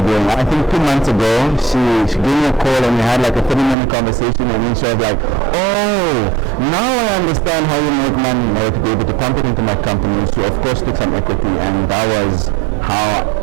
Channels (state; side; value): drops out; left; at 3.8 s